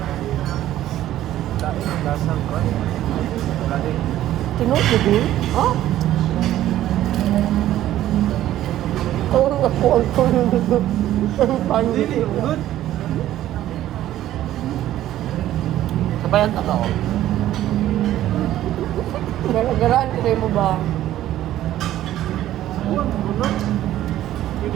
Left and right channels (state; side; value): quieter; left; 13.3 dB